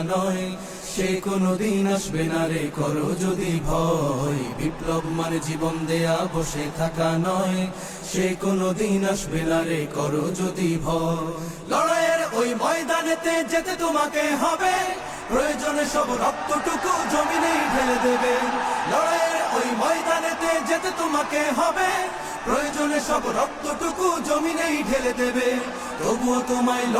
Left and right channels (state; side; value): identical; both; correlation 1.00